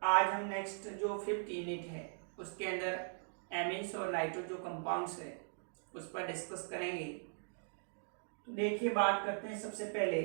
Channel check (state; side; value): silent; left; digital silence